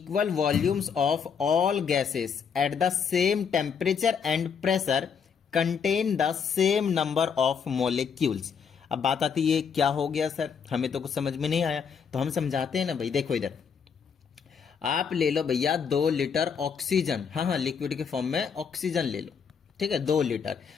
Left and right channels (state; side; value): quieter; right; 6.6 dB